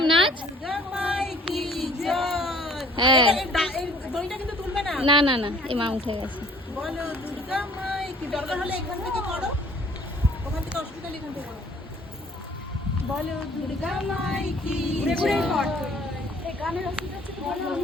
নাচ। দুর্গা মাই কি জয়। হ্যাঁ। এই দড়িটা কিন্তু তুলবে না। না না না, এই মা উঠে গেছে। বলো দুর্গা মাই কি, দরকার হলে এখান থেকে করো, ওখান থেকে অসুবিধা নেই, এখান থেকে করো। বলো দুর্গা মাই কি জয়।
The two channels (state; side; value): normal; both; correlation 0.55